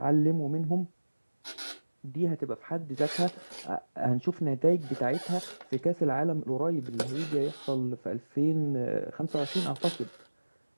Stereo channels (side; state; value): both; inverted; correlation -1.00